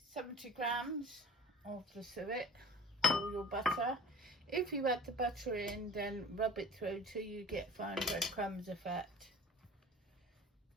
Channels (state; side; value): normal; both; correlation 0.42